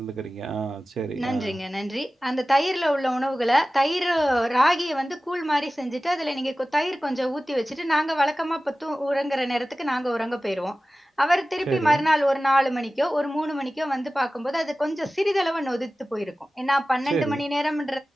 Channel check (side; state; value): both; normal; correlation 0.96